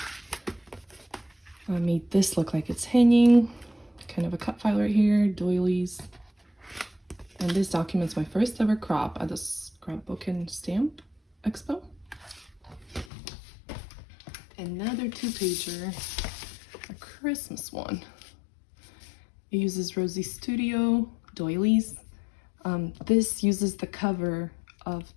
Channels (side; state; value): right; drops out; at 13.1 s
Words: I made this look like it's hanging, kind of a cut file right here, doilies. And this documents my first ever crop at the Scrapbook and Stamp Expo. Another 2-pager, a Christmas one. It uses Rosie Studio doilies. This uses the cover of